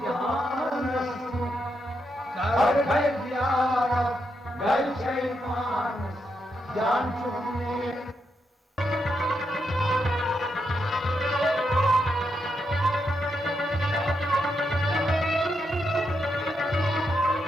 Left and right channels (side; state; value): both; normal; correlation 0.82